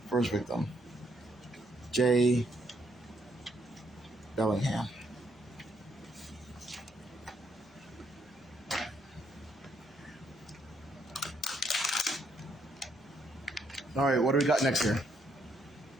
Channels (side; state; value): left; noise; hum, 30 dB below the sound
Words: First victim, J. Bellingham. All right, what do we got next here?